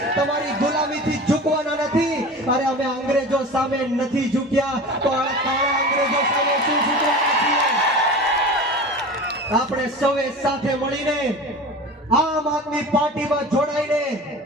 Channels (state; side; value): normal; both; correlation 0.34